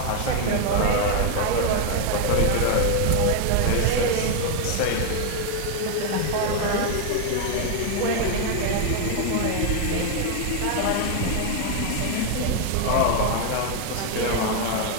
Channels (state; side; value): different; both; correlation 0.01